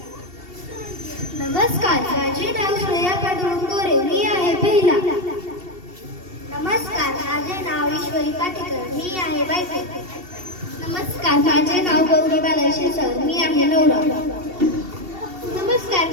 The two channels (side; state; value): left; late; 2.7 ms